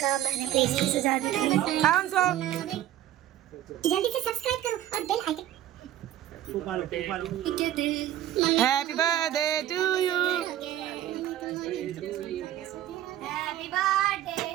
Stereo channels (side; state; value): left; quieter; 12.6 dB